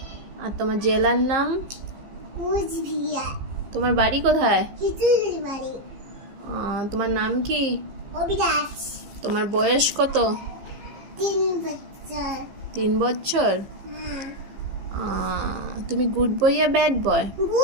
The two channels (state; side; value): late; left; 15 ms